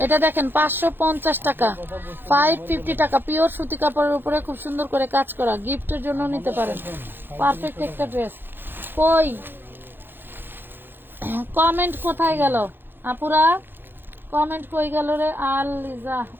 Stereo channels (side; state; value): left; late; 0.099 ms